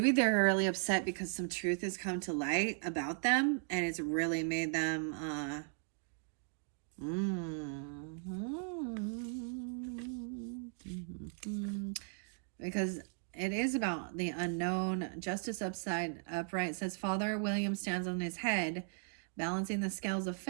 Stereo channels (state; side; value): silent; left; 53 dB below the other